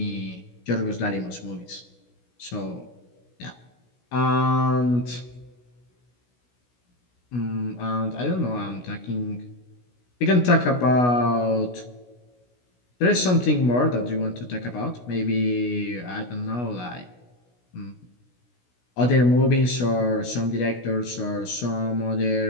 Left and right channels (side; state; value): right; late; 16 ms